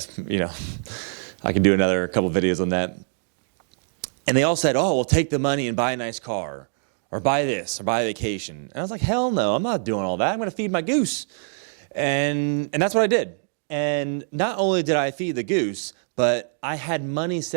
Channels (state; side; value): silent; left; digital silence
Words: you know, I can do another couple videos on that. And they all said, oh, well, take the money and buy a nice car, or buy this, or buy a vacation. And I was like, hell no, I'm not doing all that. I'm going to feed my goose. And that's what I did. And not only did I feed the goose, but I had money